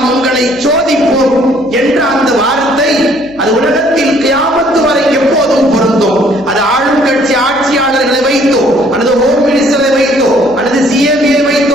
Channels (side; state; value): right; noise; hum, 26 dB below the sound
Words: உங்களை சோதிப்போம் என்ற அந்த வார்த்தை அது உலகத்தில் கியாமத்து வரை எப்போதும் பொருந்தும். அது ஆளும் கட்சி ஆட்சியாளர்களை வைத்தோ அல்லது ஹோம் மினிஸ்டரை வைத்தோ அல்லது சிஎம்ஏ